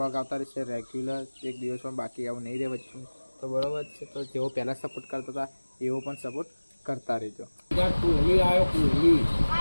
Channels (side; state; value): both; inverted; correlation -1.00